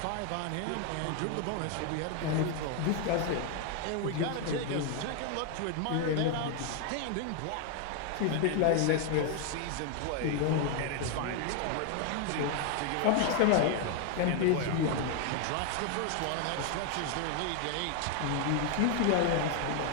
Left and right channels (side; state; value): both; different; correlation 0.01